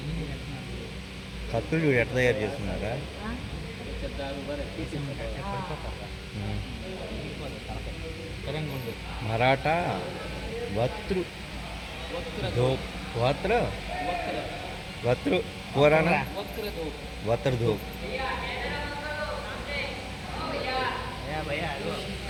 కత్తులు చూడు ఎట్లా తయారు చేస్తున్నారా మరాఠా వత్రు ధూప్ వత్రు పురాణ వత్ర ధూప్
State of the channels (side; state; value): both; identical; correlation 1.00